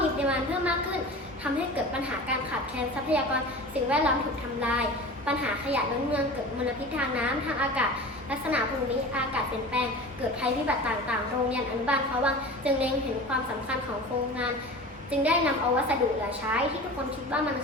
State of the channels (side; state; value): both; normal; correlation 0.35